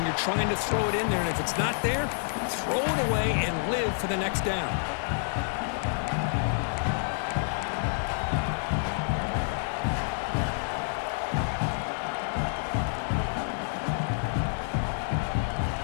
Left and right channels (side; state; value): right; silent; digital silence